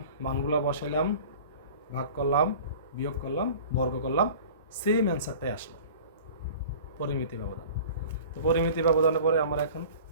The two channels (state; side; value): inverted; both; correlation -0.42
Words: মানগুলো বসাইলাম, ভাগ করলাম, বিয়োগ করলাম, বর্গ করলাম, সেম অ্যান্সারটাই আসলো, পরিমিতি ব্যবধান। তো পরিমিতি ব্যবধানের পরে আমার এখন